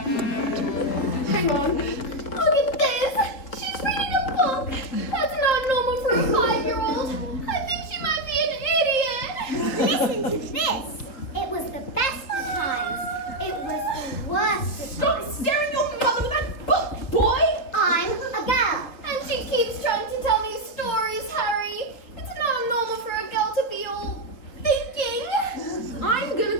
Hang on. Look at this. She's reading a book. That's not normal for a 5-year-old. I think she might be an idiot. Listen to this. It was the best of times. It was the worst of Stop times. staring your mother with that book, boy! I'm a girl. And she keeps trying to tell me stories, Harry. It's not normal for a girl to be all thinking. I'm gonna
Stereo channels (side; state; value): right; late; 4.2 ms